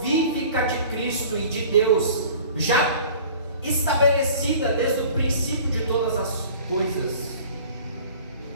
de Cristo e de Deus, já estabelecida desde o princípio de todas as coisas.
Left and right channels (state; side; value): inverted; both; correlation -0.45